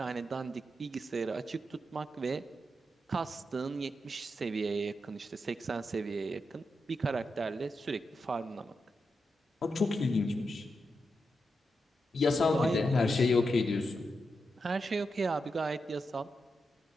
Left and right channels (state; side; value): normal; both; correlation 0.86